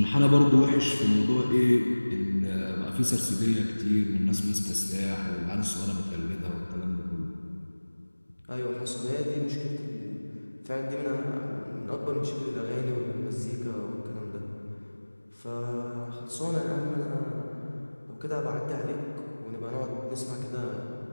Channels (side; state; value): both; inverted; correlation -1.00